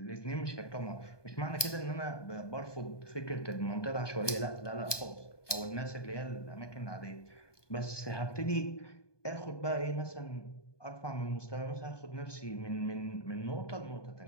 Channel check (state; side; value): late; right; 1.2 ms